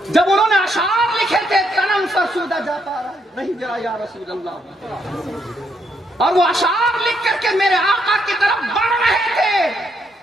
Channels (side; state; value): both; normal; correlation 0.75